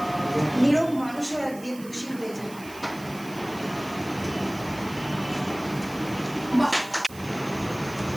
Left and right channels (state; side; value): noise; right; hiss, 19 dB below the sound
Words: নীরব মানুষও একদিন দোষী হয়ে যায়।